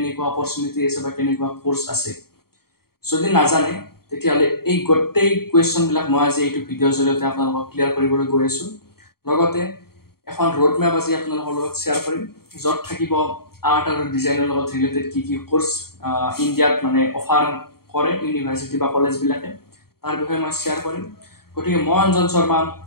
অপৰচুনিটি আছে বা কেনেকুৱা কোৰ্চ আছে? যদি নাজানে তেতিয়াহ'লে এই গোটেই কুৱেশ্যনবিলাক মই আজি এইটো ভিডিঅ'ৰ জৰিয়তে আপোনালোকক ক্লিয়াৰ কৰিবলৈ গৈ আছোঁ। লগতে এখন ৰোড মেপ আজি আপোনালোকৰ লগত শ্বেয়াৰ কৰিম, য'ত থাকিব আৰ্ট আৰু ডিজাইনৰ লগত ৰিলেটেড কি কোৰ্চ ইণ্ডিয়াত অফাৰ কৰে ইউনিভাৰ্চিটি বা কলেজবিলাকে, তাৰ বিষয়ে মই শ্বেয়াৰ কৰিম। গতিকে মই অঞ্জন শৰ্মা,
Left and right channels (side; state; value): right; late; 0.94 ms